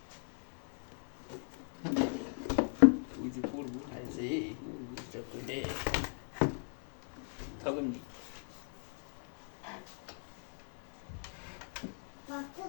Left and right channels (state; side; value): silent; right; 52 dB below the other